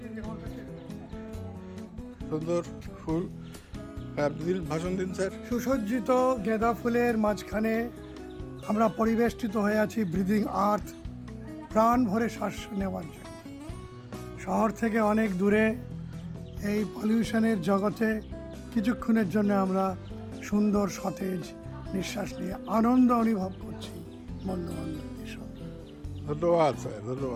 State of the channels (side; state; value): both; identical; correlation 1.00